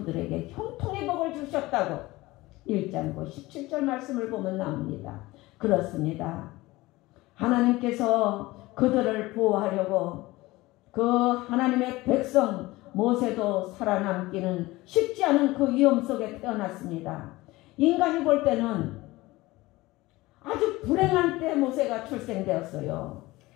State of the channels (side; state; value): right; quieter; 19.8 dB